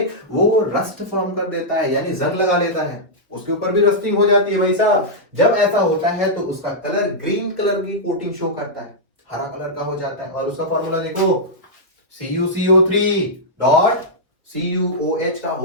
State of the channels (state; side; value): normal; both; correlation -0.09